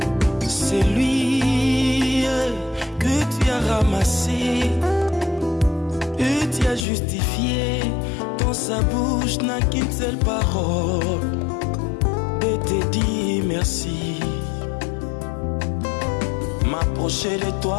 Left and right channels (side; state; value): right; drops out; at 6.9 s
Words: C'est lui que tu as ramassé et tu as justifié. Dans sa bouche n'a qu'une seule parole de te dire merci. M'approcher de